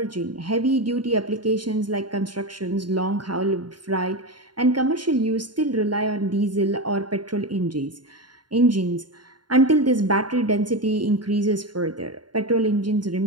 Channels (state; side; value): late; left; 0.71 ms